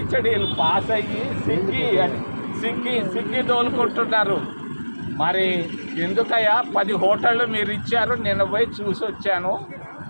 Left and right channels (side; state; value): both; inverted; correlation -1.00